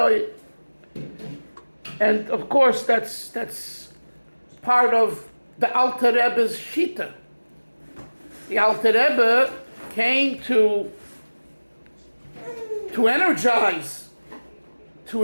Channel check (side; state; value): both; inverted; correlation -1.00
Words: And of course, that's part of the Alter Rebbe's Shita. The Alter Rebbe came to energize,